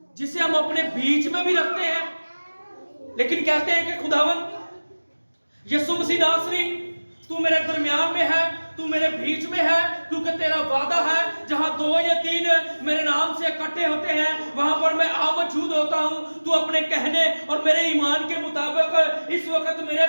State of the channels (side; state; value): both; inverted; correlation -1.00